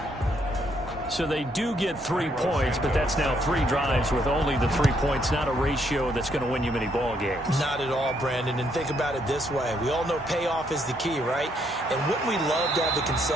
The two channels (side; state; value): both; normal; correlation 0.72